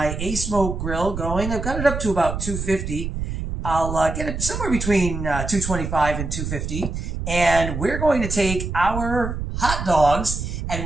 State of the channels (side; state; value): right; noise; rumble, 5 dB below the sound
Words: A-Smoke grill going. I've got it up to about 250. I'll get it somewhere between 225 and 250. And we're going to take our hot dogs and